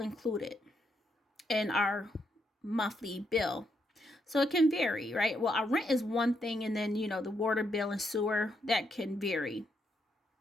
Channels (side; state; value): both; normal; correlation 0.78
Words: included in our monthly bill. So it can vary, right? Well, our rent is one thing, and then, the water bill and sewer, that can vary.